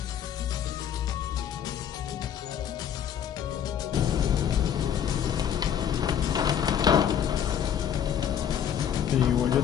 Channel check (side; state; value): right; quieter; 9.1 dB